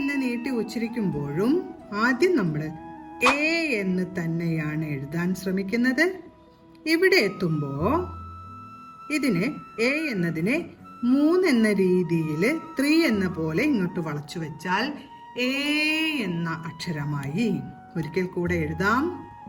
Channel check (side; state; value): both; identical; correlation 1.00